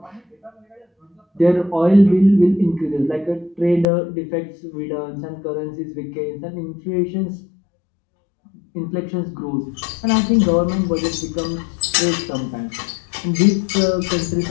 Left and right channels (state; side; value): drops out; right; at 3.9 s